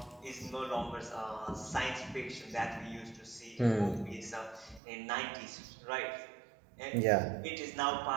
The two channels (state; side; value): drops out; left; at 4.8 s